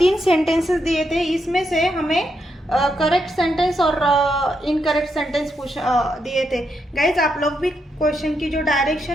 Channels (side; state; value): both; normal; correlation 0.81